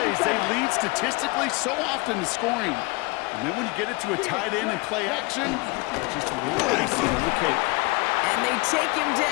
they lead statistically so often to scoring. And then when you get it to a tight end and play action, it's just a little icing on the cake. And they take him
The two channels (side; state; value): right; quieter; 26.1 dB